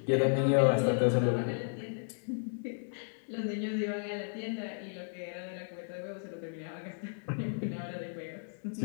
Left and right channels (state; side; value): silent; right; digital silence